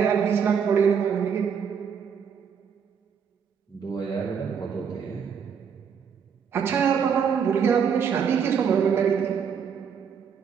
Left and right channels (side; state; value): left; quieter; 7.0 dB